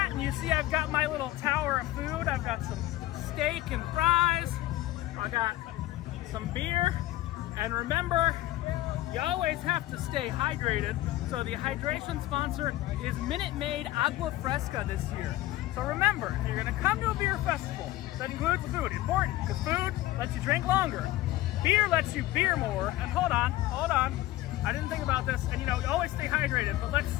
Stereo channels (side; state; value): right; quieter; 16.3 dB